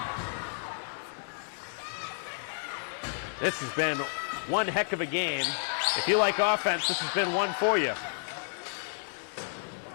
This has been one heck of a game. If you like offense, this has been one for you.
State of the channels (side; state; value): right; silent; digital silence